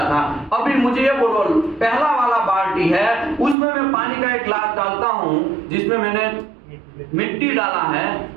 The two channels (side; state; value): left; drops out; at 3.6 s